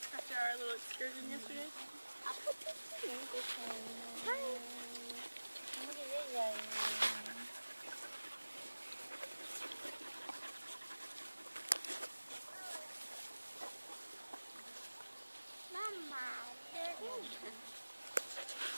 our little excursion yesterday.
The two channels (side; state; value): both; inverted; correlation -1.00